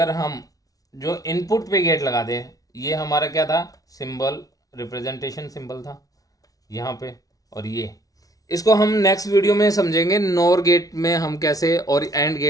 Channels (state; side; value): late; right; 0.18 ms